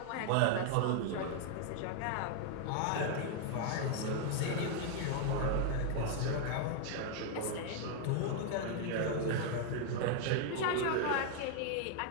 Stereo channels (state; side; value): different; both; correlation 0.00